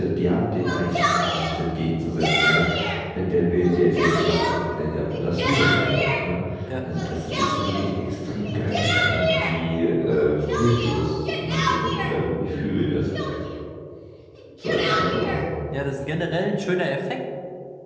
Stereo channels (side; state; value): both; identical; correlation 1.00